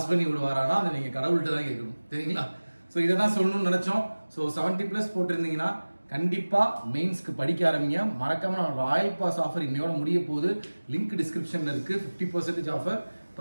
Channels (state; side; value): inverted; both; correlation -1.00